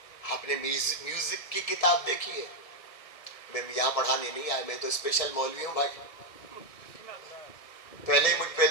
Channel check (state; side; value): late; right; 1.7 ms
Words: آپ نے میوزک کی کتاب دیکھی ہے؟ میں یہاں پڑھانے نہیں آیا, میں تو اسپیشل مولوی ہوں بھائی. پہلے ہی مجھ پہ